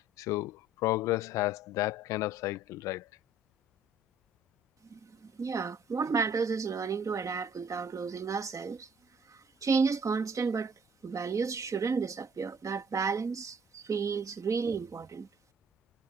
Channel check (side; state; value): both; normal; correlation 0.57